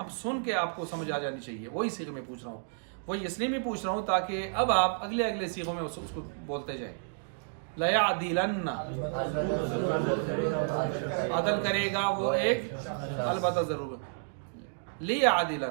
سن کے آپ کو سمجھ آ جانی چاہیے. وہی صیغے میں پوچھ رہا ہوں، وہی اس لیے میں پوچھ رہا ہوں تاکہ اب آپ اگلے صیغوں میں اس کو بولتے جائیں. لا یعدلن عدل کرے گا وہ ایک، البتہ ضرور.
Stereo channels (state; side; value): silent; left; digital silence